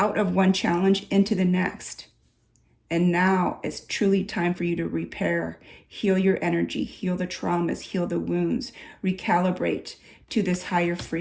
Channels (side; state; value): both; identical; correlation 1.00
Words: of one challenge into the next. And now it's truly time for you to repair, heal your energy, heal the traumas, heal the wounds, recalibrate to this higher